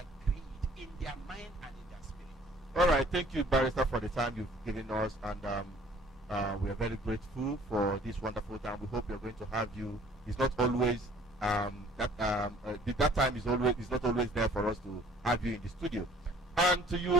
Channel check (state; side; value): normal; both; correlation 0.54